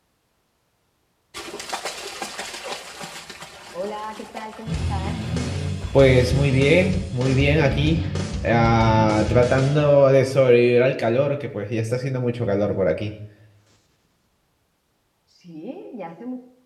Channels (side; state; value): both; identical; correlation 1.00